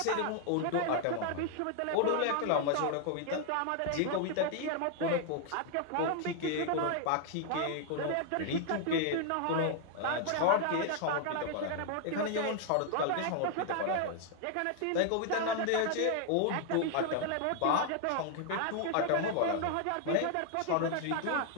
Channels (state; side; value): different; both; correlation 0.00